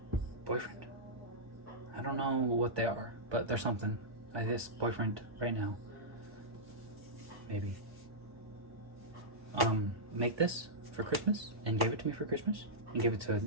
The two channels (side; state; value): left; late; 1.2 ms